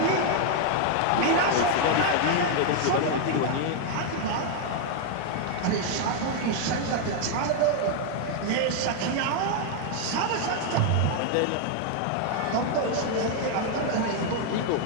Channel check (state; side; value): different; both; correlation 0.00